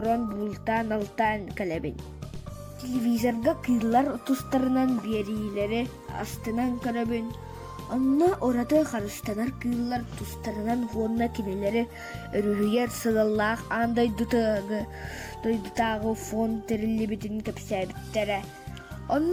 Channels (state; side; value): identical; both; correlation 1.00